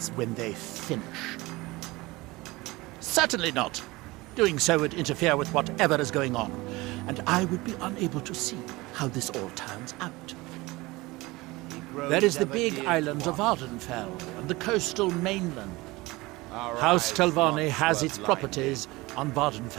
when they finish. Certainly not. Doing so would interfere with whatever is going on, and I would be unable to see how this all turns out. There is the big island of Ardenfell and the coastal mainland. House Telvanni has its properties on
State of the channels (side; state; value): left; quieter; 21.4 dB